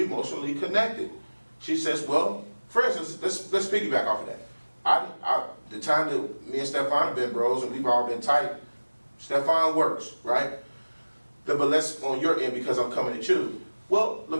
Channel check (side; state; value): both; inverted; correlation -1.00